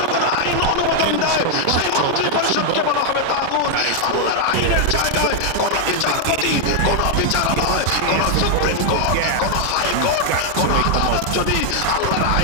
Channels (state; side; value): different; both; correlation 0.00